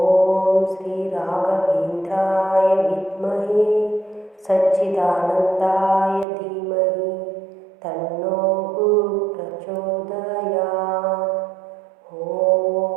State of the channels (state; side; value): drops out; left; at 6.2 s